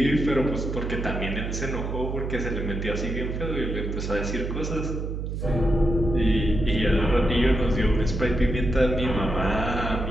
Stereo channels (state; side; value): noise; right; hum, 4 dB below the sound